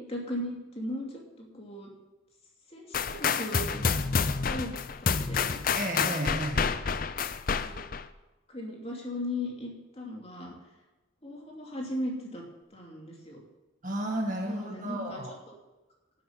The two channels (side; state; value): right; quieter; 3.4 dB